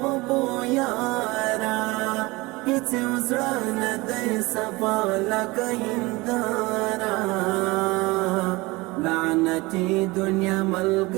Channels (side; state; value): left; quieter; 22.8 dB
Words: غبو یارا هیڅ وزړه نه دی صفا لکه هنداره لعنتي دنیا